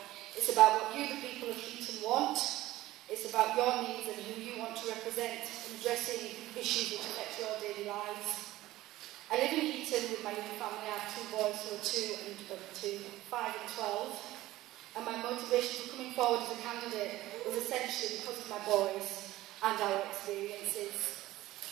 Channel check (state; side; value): quieter; left; 16.4 dB